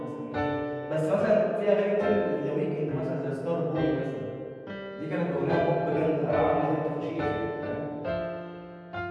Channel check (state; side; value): identical; both; correlation 1.00